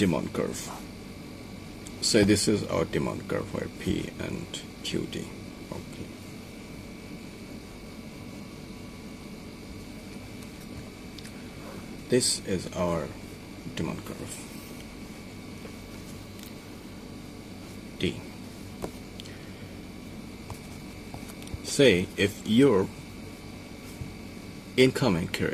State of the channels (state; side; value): identical; both; correlation 1.00